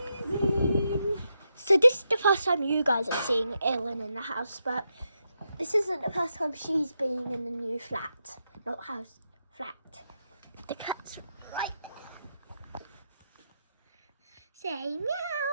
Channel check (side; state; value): both; inverted; correlation -0.84